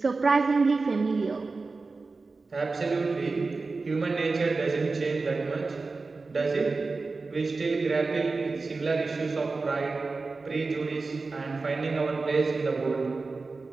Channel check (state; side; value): quieter; left; 3.9 dB